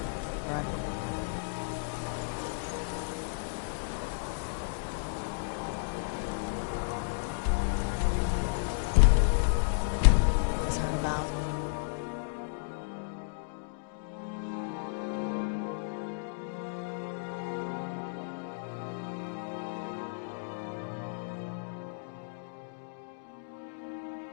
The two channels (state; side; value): silent; right; digital silence